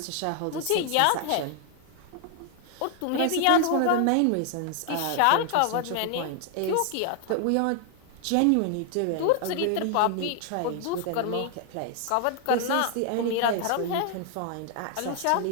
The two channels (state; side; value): different; both; correlation 0.00